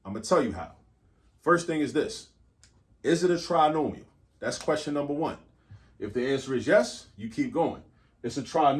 I'm going to tell you how. First thing is this. Is it a trinomial? That's question number one. If the answer is yes, you keep going. It's a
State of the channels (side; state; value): both; identical; correlation 1.00